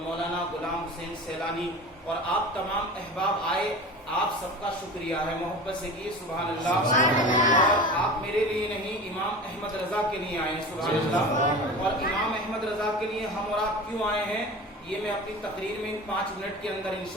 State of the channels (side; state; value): both; normal; correlation 0.34